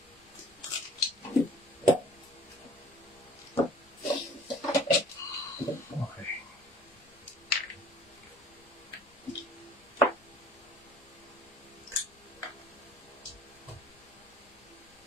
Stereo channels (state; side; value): noise; left; rumble, 28 dB below the sound